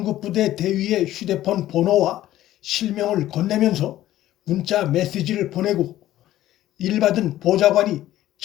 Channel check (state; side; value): quieter; right; 13.9 dB